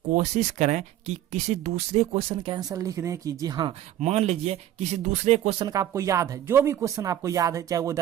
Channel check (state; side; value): quieter; left; 12.1 dB